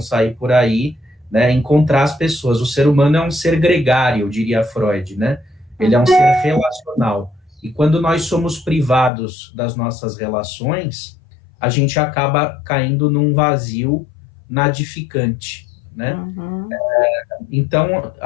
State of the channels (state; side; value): drops out; right; at 9.1 s